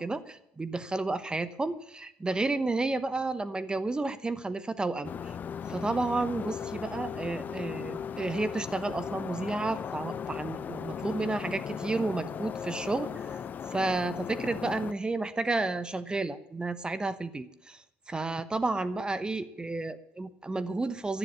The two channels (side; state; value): both; normal; correlation 0.86